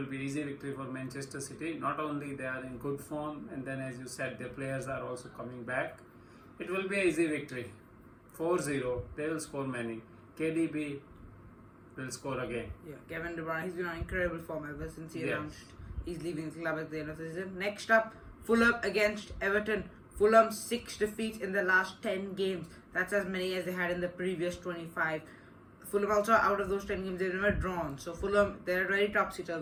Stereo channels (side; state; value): both; identical; correlation 1.00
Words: be easy victory for Manchester City. Not only they are in good form, and then as you said, their players are also coming back. It will be an easy victory. 4-0, they will score many. KDB will score again. Yeah, Kevin De Bruyne, he's been on incredible form ever since he Yes. announced he's leaving the club at the end of the season. Next up, Fulham against Everton. Fulham 6 defeats in the last 10 games. That's as many as they had in the previous 25. Fulham also, out of those 10 games, they've never drawn. So Fulham, they're a very